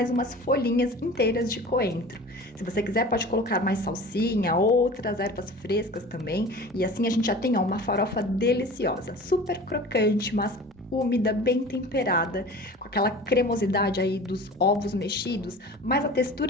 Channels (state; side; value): normal; both; correlation 0.39